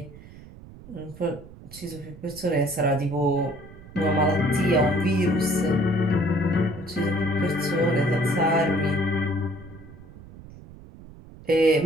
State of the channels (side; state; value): right; noise; rumble, 19 dB below the sound